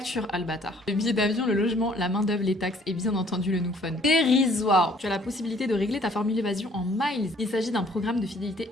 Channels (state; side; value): normal; both; correlation 0.59